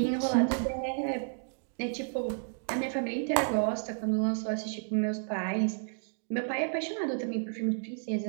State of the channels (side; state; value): left; silent; 57 dB below the other